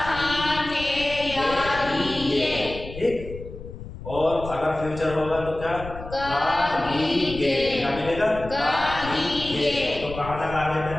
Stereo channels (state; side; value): noise; left; rumble, 12 dB below the sound